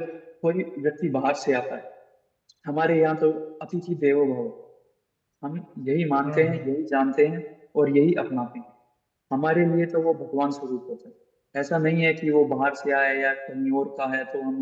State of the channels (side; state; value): both; identical; correlation 1.00